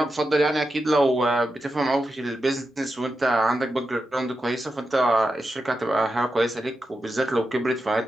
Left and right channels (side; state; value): both; normal; correlation 0.88